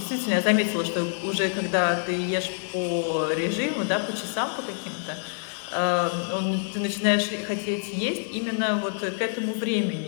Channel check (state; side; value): silent; right; digital silence